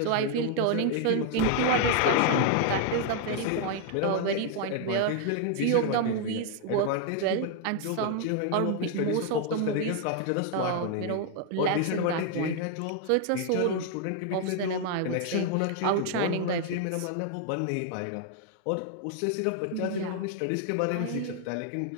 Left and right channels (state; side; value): different; both; correlation 0.00